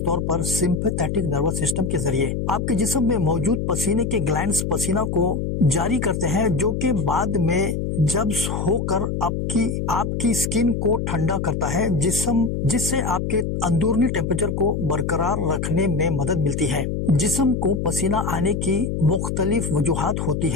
طور پر سمپیتھیٹک نروس سسٹم کے ذریعے۔ آپ کے جسم میں موجود پسینے کے گلینڈز پسینہ کو جاری کرتے ہیں جو کہ بعد میں جذب ہو کر آپ کی سکن کو ٹھنڈا کرتا ہے، جس سے آپ کے اندرونی ٹیمپریچر کو برقرار رکھنے میں مدد ملتی ہے۔ جسم کو پسینہ آنے کی مختلف وجوہات ہوتی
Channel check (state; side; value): noise; left; hum, 2 dB below the sound